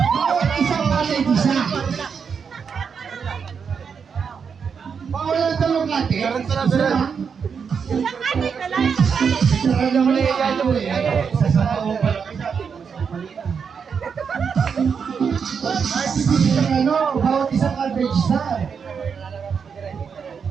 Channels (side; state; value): left; quieter; 6.4 dB